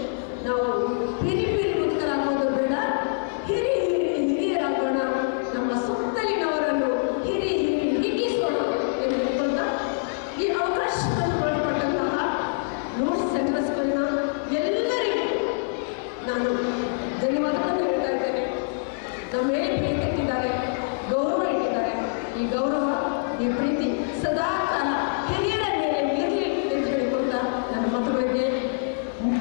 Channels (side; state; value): right; silent; digital silence